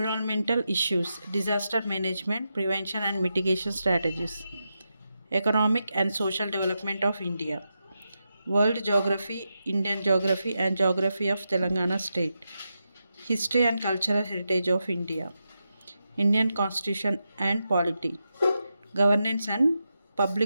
issues, disaster management, prevention and mitigation strategies. Economic and social development of India. World geography, Indian geography and geography of Telangana state. History and cultural heritage of India. Indian constitution and polity. Governance and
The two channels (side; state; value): both; inverted; correlation -0.87